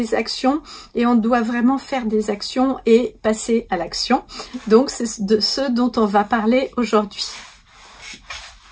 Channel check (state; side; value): identical; both; correlation 1.00